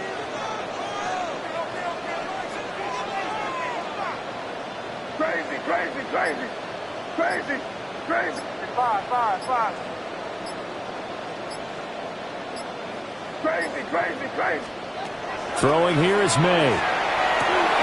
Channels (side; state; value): both; identical; correlation 1.00